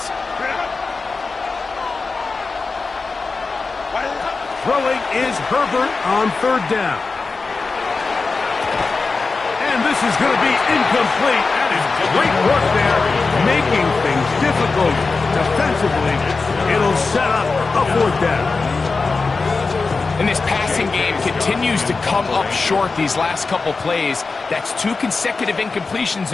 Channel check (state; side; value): quieter; right; 4.1 dB